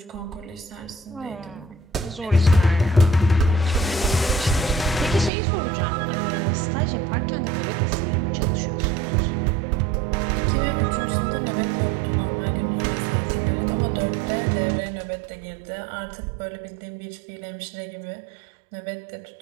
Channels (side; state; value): left; drops out; at 5.3 s